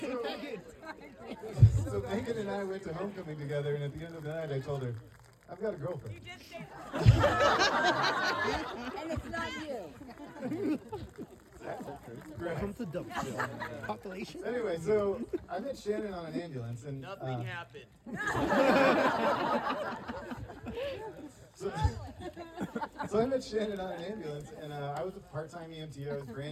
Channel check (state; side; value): identical; both; correlation 1.00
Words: So Megan and I went to homecoming together, and at the end of the night, I told her, "I've got a girlfriend." You did say And it's not you. Welcome to Dumpsville. Population. Anyway, so I met Shannon on an ambulance, and Nothing happened. So I met Shannon on an ambulance, and I was a part-time EMT. I was